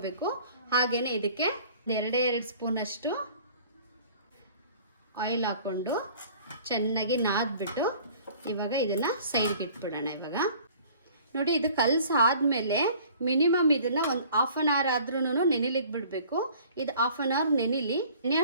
ಹಾಗೆಯೇ ಇದಕ್ಕೆ 2 ಸ್ಪೂನಷ್ಟು ಆಯಿಲ್ ಹಾಕ್ಕೊಂಡು ಚೆನ್ನಾಗಿ ನಾದ್ಬಿಟ್ಟು ಇವಾಗ ಇದನ್ನು ಸೈಡ್ಗೆ ಇಟ್ಬಿಡೋಣ. ಇವಾಗ ನೋಡಿ, ಇದು ಕಲಸಾದ್ಮೇಲೆ ಮಿನಿಮಮ್ ಇದನ್ನು ಒಂದು 1/2 ಅವರ್ ಆದ್ರೂ ನೆನೆಲಿಕ್ಕೆ ಬಿಡಬೇಕು. ಇದು 1/2 ಅವರ್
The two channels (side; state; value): both; inverted; correlation -0.51